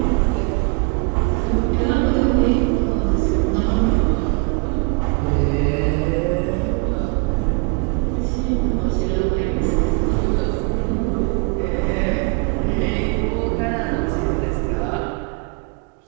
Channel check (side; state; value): left; quieter; 31.8 dB